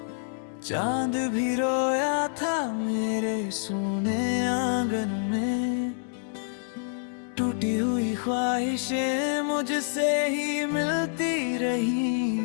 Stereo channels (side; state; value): right; silent; digital silence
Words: चांद भी रोया था मेरे सोने आंगन में, टूटी हुई ख्वाहिशें मुझसे ही मिलती रही।